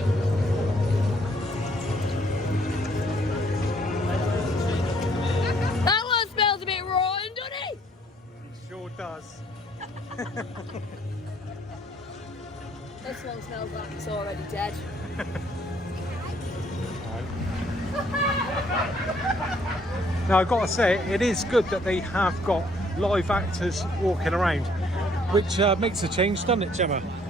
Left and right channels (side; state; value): both; normal; correlation 0.64